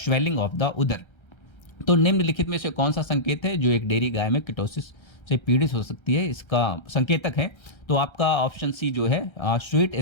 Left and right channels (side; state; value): right; late; 1.3 ms